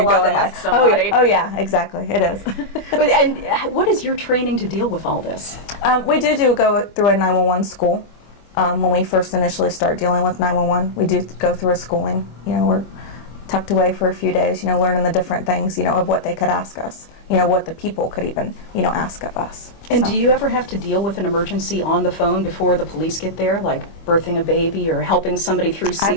go in there. Oh yeah, exactly, it is. And what is your training to deal with all this? We do go through a 911 school. When we first initially start dealing with 911, we do go through a schooling. We're tucked away for a few days, learning the different things, of what they could ask us, what the people could even, ask of us. And do you ever have to deal with an emergency on the phone before the police get there, like birthing a baby or helping somebody through CPR?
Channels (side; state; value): right; late; 25 ms